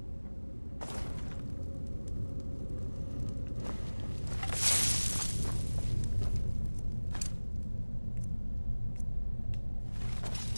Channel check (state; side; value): inverted; both; correlation -1.00